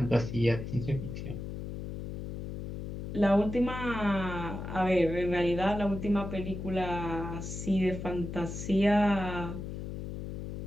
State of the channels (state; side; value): noise; left; hum, 6 dB below the sound